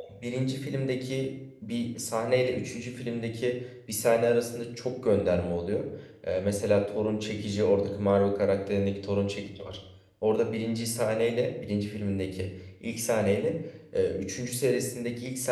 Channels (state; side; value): identical; both; correlation 1.00